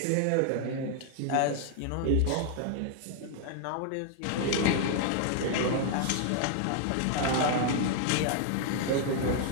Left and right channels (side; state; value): both; different; correlation 0.00